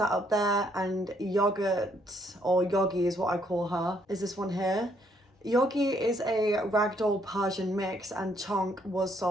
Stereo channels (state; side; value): normal; both; correlation 0.69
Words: up there, and Yogurt, or Yogi is what I call her, is this one here. Yogi is a ragdoll Persian mix, and Chonk was